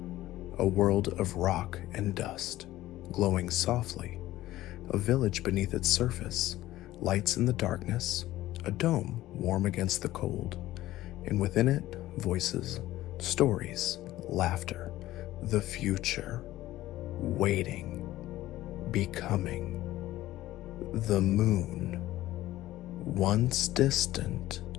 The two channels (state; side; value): quieter; right; 15.5 dB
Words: A world of rock and dust, glowing softly, a village beneath its surface, lights in the darkness, a dome warm against the cold, and within it, voices, stories, laughter, the future, waiting, becoming. The moon, once distant,